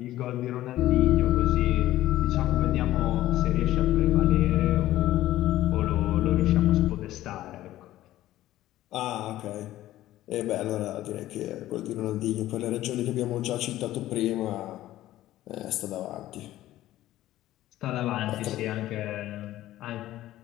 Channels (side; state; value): right; quieter; 14.7 dB